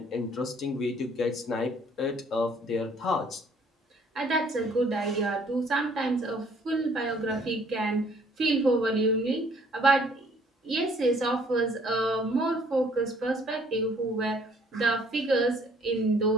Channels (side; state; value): both; normal; correlation 0.60